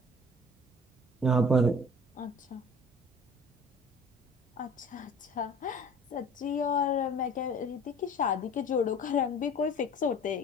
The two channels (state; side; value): normal; both; correlation 0.45